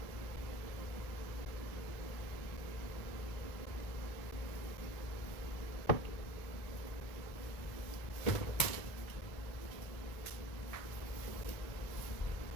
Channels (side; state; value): right; late; 2.3 ms